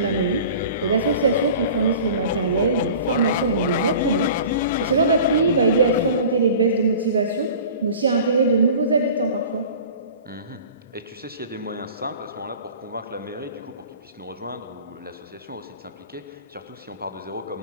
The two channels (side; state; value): both; inverted; correlation -0.42